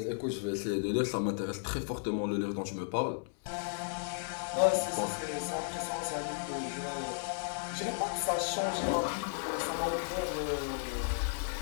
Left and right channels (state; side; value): silent; right; digital silence